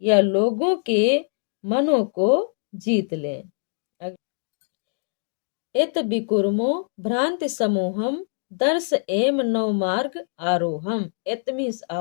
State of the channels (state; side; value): silent; right; digital silence